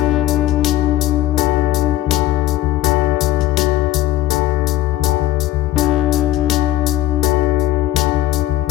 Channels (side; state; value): right; quieter; 14.9 dB